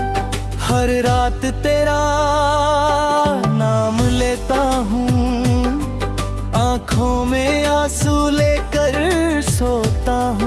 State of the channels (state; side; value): identical; both; correlation 1.00